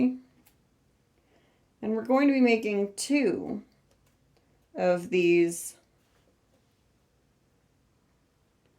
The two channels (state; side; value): identical; both; correlation 1.00